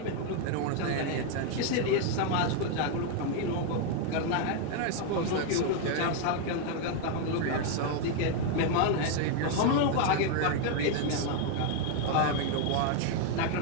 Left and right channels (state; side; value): different; both; correlation 0.00